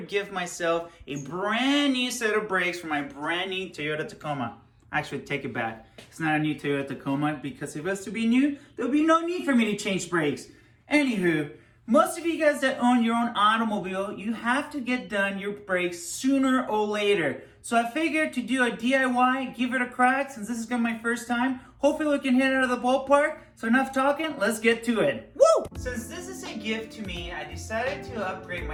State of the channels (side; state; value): both; identical; correlation 1.00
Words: give myself a brand new set of brakes for my brand new Toyota Tacoma. Actually, take it back. It's not a new Toyota Tacoma because if it was to be new, there'll be no need for me to change brakes. Anywho, most of you guys that own your own automobile, you have to get done your brakes sooner or later. So I figured to do a DIY, give it a crack since this is gonna be my first time. Hopefully we can hit it out of the ballpark. So enough talking, let's get to it. Woo! Since this is a gift to me, I decided to upgrade